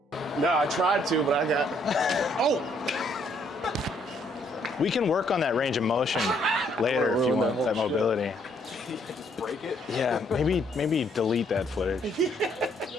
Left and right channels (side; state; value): both; normal; correlation 0.68